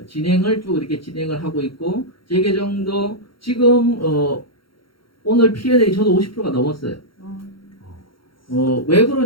진행을 쭉 이렇게 진행을 하고 있고 재계정도 지금 오늘 P&L이 저도 50%가 넘었어요. 왜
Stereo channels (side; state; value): right; late; 0.74 ms